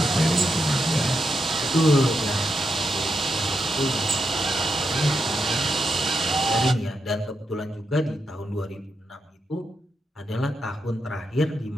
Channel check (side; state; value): both; normal; correlation 0.84